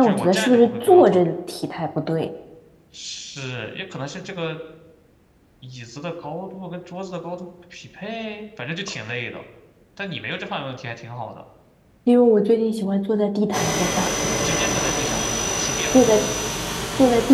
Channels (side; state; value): both; identical; correlation 1.00